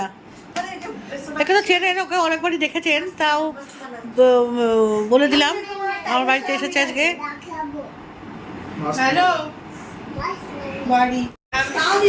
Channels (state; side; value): identical; both; correlation 1.00